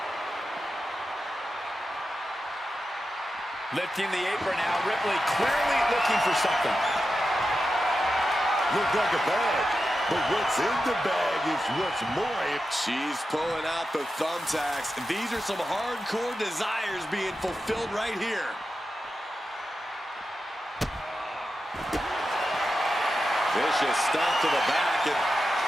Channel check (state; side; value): normal; both; correlation 0.90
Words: Lifting the apron now. Ripley clearly looking for something. Looked like a bag, but what's in the bag is what's more. She's pulling out the thumbtacks. These are some hardcore desires being fulfilled right here. Vicious stomp to the back and